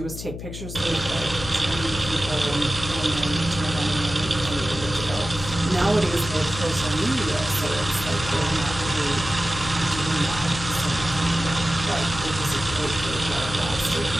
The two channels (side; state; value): left; noise; hum, 9 dB below the sound